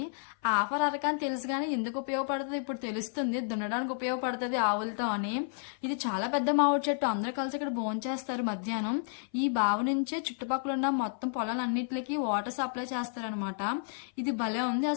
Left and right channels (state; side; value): silent; right; 55 dB below the other